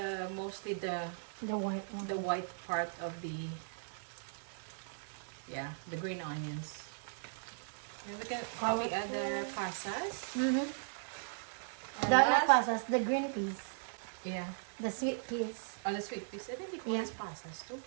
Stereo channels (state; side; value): silent; left; digital silence